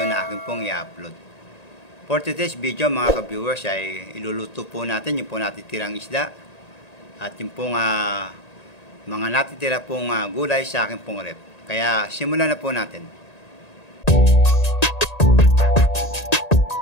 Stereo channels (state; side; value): late; right; 1.8 ms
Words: na aking pong i-upload. For today's video mga ka-viewers ay iluluto po natin yung po natitirang isda at yung pong mga natitira pong gulay sa aking pong rep. Kaya simulan na po natin.